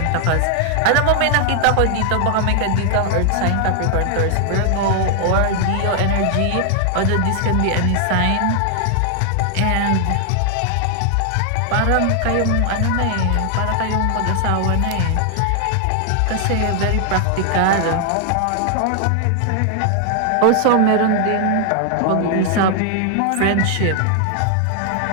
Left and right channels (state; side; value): different; both; correlation 0.00